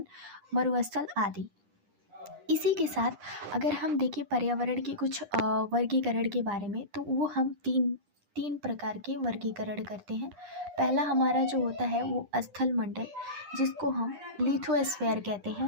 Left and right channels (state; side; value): late; left; 9.9 ms